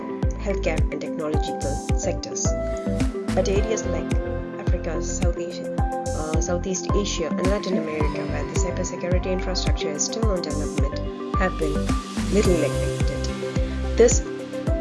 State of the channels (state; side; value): identical; both; correlation 1.00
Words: healthcare and technological sectors. But areas like Africa, Southeast Asia and Latin America, where the cybersecurity infrastructure is still on development, have been little neglected. This